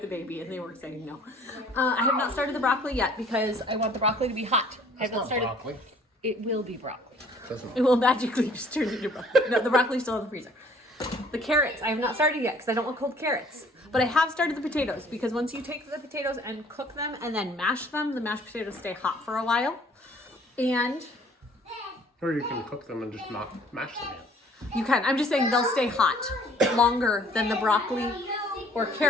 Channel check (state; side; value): normal; both; correlation 0.56